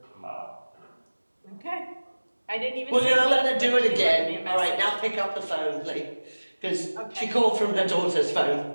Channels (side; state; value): both; inverted; correlation -1.00